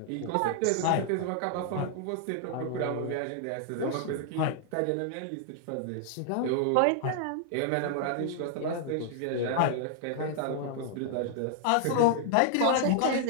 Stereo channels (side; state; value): both; different; correlation 0.00